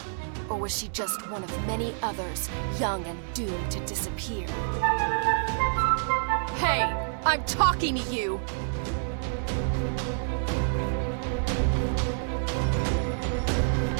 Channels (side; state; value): left; silent; 57 dB below the other